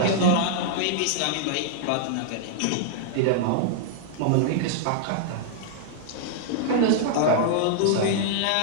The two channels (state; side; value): different; both; correlation -0.01